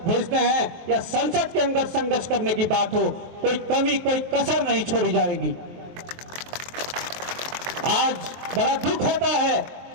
भेजते हैं या संसद के अंदर संघर्ष करने की बात हो, कोई कमी, कोई कसर नहीं छोड़ी जाएगी। आज बड़ा दुख होता है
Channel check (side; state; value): left; late; 23 ms